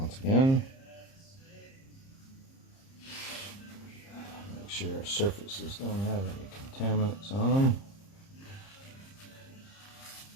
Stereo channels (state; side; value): late; right; 30 ms